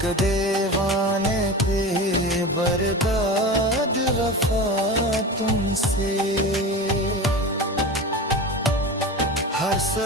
देवाने पे बर्बाद वफा तुमसे। हर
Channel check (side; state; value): both; normal; correlation 0.29